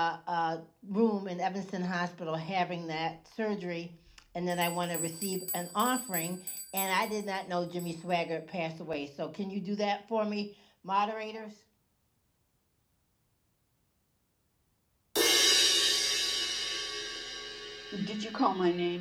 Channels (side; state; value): both; identical; correlation 1.00